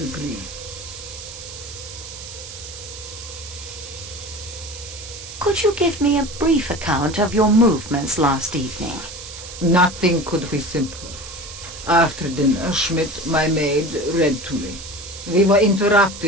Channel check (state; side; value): noise; right; hiss, 12 dB below the sound